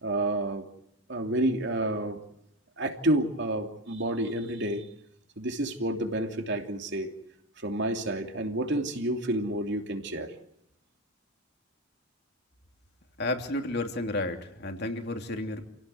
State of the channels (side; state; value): both; normal; correlation 0.18